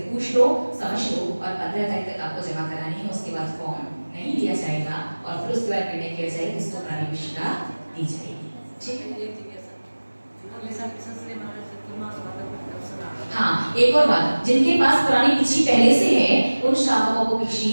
पूछ लो, समझ लो, और 15 तारीख तक आपको जमा करानी है। उसके बाद फॉर्म नहीं लिया जाएगा और फिर उसके बाद निर्णय किया जाएगा किसको प्राणी भिक्षिका दी जाएगी। ठीक है, हाँ, एक और बात, जिनके पास पुरानी भिक्षी पहले से है उन श्रावकों को भिक्षी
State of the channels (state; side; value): inverted; both; correlation -1.00